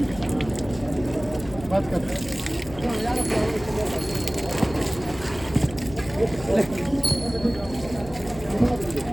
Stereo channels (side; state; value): left; noise; hum, 15 dB below the sound